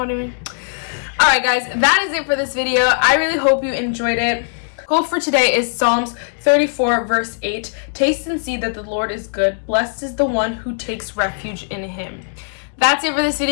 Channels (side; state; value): right; silent; digital silence